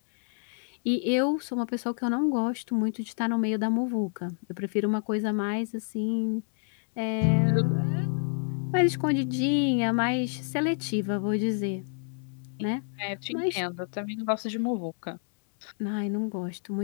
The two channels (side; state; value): right; silent; 59 dB below the other